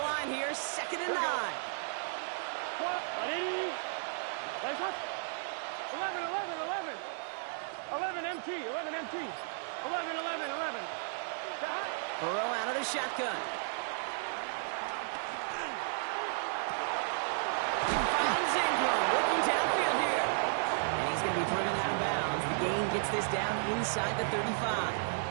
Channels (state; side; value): silent; left; digital silence